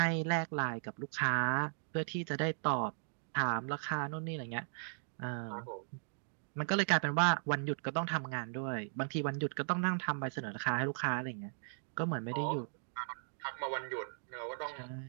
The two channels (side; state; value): left; silent; digital silence